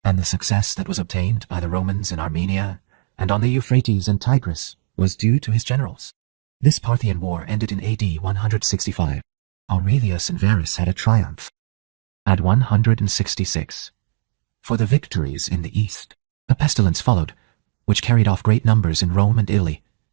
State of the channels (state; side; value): silent; left; digital silence